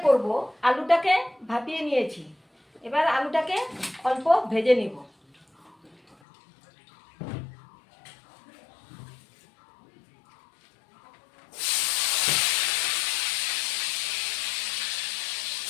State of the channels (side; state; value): right; drops out; at 6.2 s